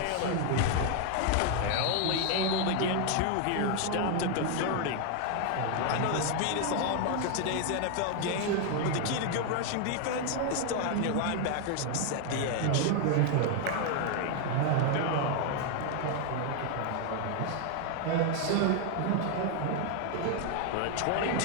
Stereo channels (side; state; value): both; different; correlation 0.00